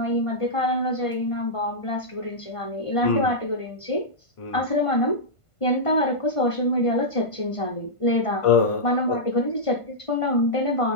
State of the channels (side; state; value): right; late; 1.5 ms